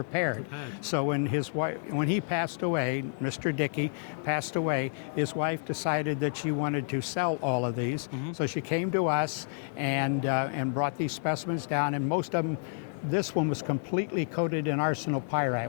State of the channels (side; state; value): right; silent; digital silence